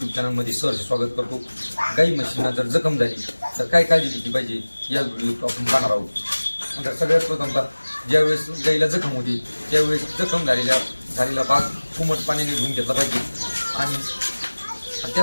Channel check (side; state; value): both; inverted; correlation -1.00